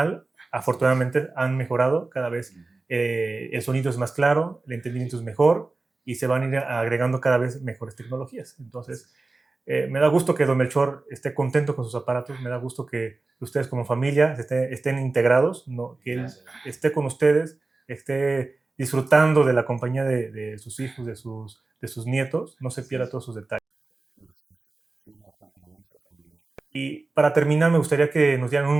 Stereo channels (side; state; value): left; quieter; 3.5 dB